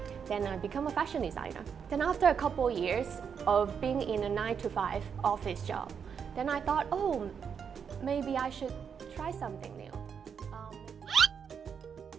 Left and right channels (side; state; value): left; quieter; 7.0 dB